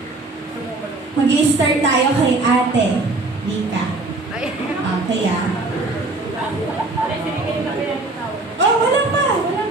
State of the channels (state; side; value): quieter; left; 3.1 dB